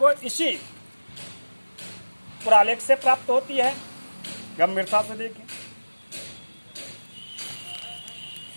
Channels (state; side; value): inverted; both; correlation -1.00